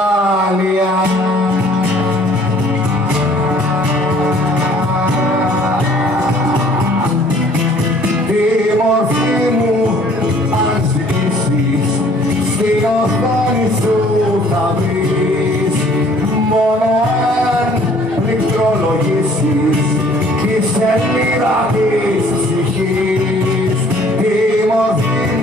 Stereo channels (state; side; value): normal; both; correlation 0.57